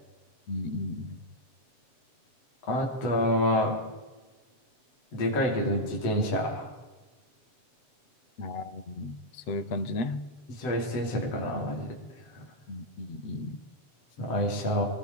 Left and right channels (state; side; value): late; right; 7.9 ms